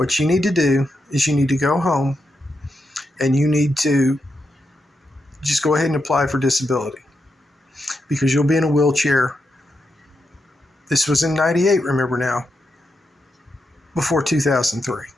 you need to do is you need to go home and you need to just go ahead and apply for disability, because you'll be in a wheelchair. This was in '98, remember now, before 2003.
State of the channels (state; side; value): normal; both; correlation 0.85